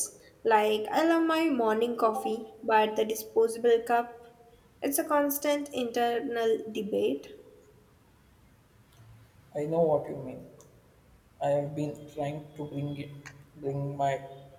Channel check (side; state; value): both; identical; correlation 1.00